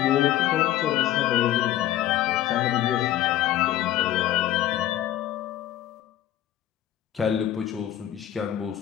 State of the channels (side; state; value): right; quieter; 12.9 dB